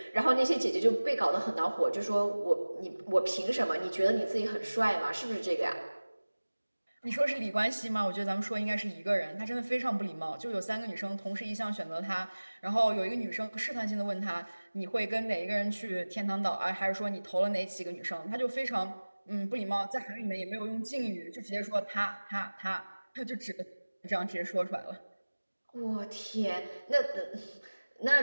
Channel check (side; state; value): both; inverted; correlation -1.00